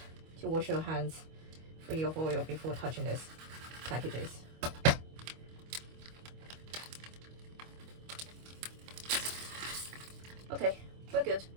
to wash your hands free of oil before touching these packages. Okay, we're good.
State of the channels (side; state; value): left; late; 25 ms